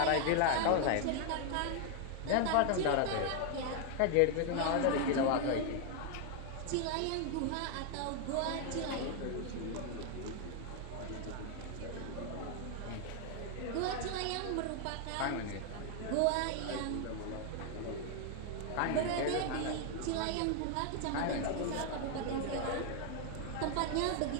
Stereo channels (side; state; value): both; different; correlation 0.00